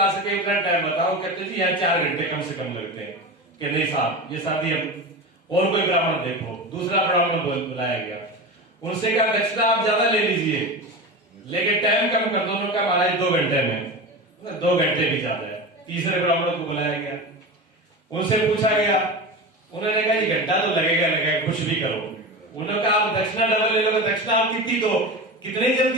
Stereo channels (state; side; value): normal; both; correlation 0.26